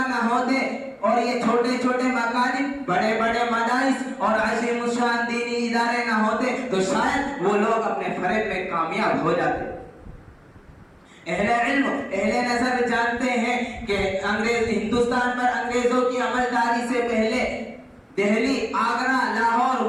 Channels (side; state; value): both; identical; correlation 1.00